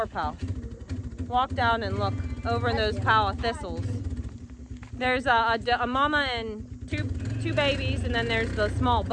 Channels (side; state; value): both; identical; correlation 1.00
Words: pile? Walk down and look over in those pile of thistles. There's a mama and two babies, and then there's the small